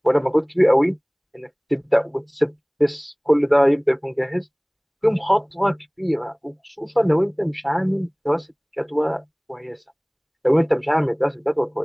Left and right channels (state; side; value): identical; both; correlation 1.00